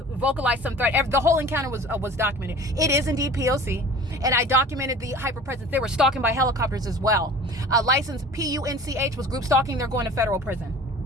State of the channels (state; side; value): normal; both; correlation 0.42